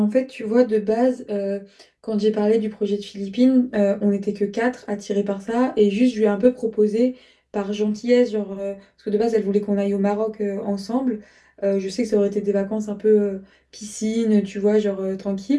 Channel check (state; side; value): identical; both; correlation 1.00